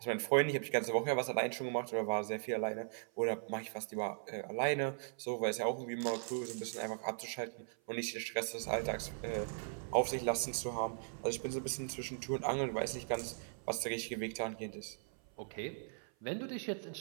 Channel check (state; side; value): silent; left; 52 dB below the other